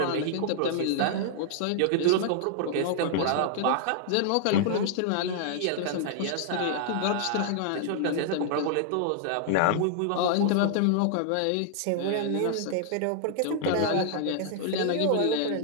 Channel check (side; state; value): both; different; correlation -0.01